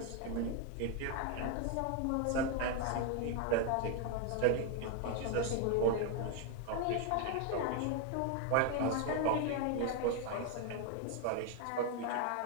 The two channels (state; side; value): different; both; correlation 0.01